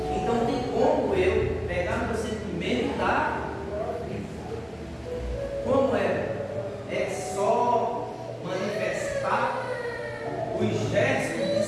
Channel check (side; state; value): both; identical; correlation 1.00